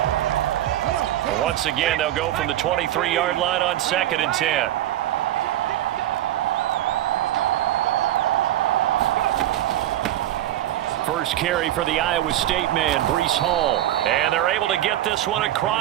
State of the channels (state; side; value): quieter; left; 13.3 dB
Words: Once again, they'll go from the 23-yard line on 2nd and 10. First carry for the Iowa State man, Breece Hall. And they're able to get this one